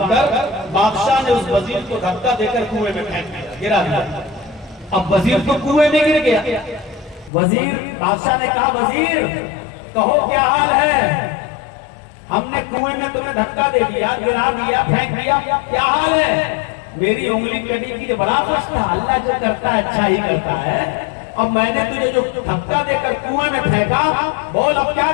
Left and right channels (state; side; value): drops out; right; at 7.3 s